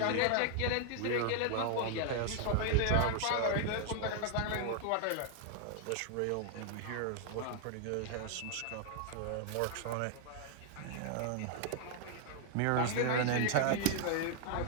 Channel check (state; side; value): different; both; correlation 0.00